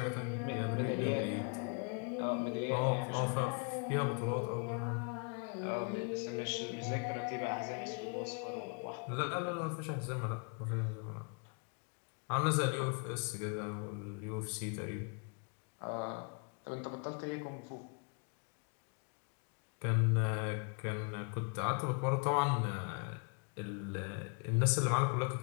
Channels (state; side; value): quieter; right; 38.6 dB